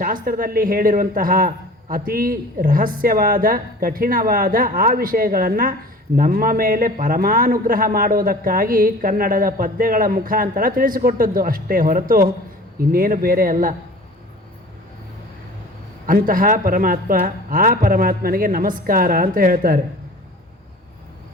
ಹೇಳಿರುವಂತಹ ಅತಿ ರಹಸ್ಯವಾದ, ಕಠಿಣವಾದ ಆ ವಿಷಯಗಳನ್ನು ನಮ್ಮ ಮೇಲೆ ಪರಮಾನುಗ್ರಹ ಮಾಡುವುದಕ್ಕಾಗಿ ಕನ್ನಡದ ಪದ್ಯಗಳ ಮುಖಾಂತರ ತಿಳಿಸಿಕೊಟ್ಟದ್ದು ಅಷ್ಟೇ ಹೊರತು ಇನ್ನೇನು ಬೇರೆ ಅಲ್ಲ. ಅಂತಹ ಪರಮಾತ್ಮ, ಆ ಪರಮಾತ್ಮನಿಗೆ ನಮಸ್ಕಾರ ಅಂತ ಹೇಳ್ತಾರೆ.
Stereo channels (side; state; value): both; normal; correlation 0.43